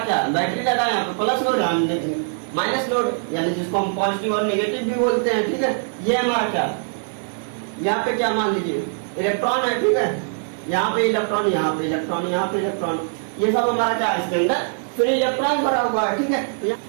क्या बैटरी लगा है, यहाँ पे प्लस लोड, हम देखेंगे माइनस लोड, यानी जिसको हम पॉजिटिव और नेगेटिव भी बोलते हैं। ठीक है, ये हमारा क्या, यहाँ पे क्या मान लीजिए इलेक्ट्रॉन है। ठीक है, यहाँ पे इलेक्ट्रॉन, यहाँ पे इलेक्ट्रॉन, यहाँ पे इलेक्ट्रॉन, ये सब हमारा क्या है? इसके अंदर फिर इलेक्ट्रॉन भरा हुआ है। ठीक है, तो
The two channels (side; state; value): left; silent; digital silence